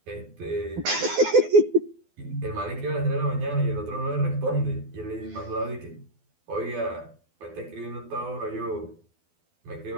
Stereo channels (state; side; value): late; left; 12 ms